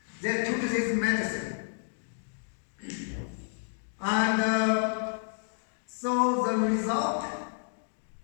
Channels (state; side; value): silent; right; digital silence